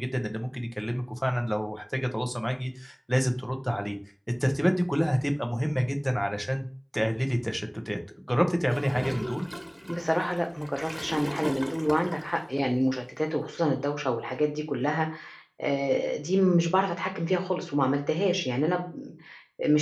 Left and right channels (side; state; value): both; identical; correlation 1.00